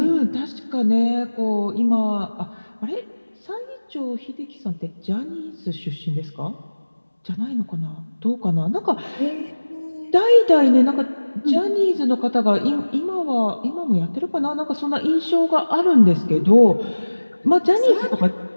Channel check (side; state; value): both; inverted; correlation -1.00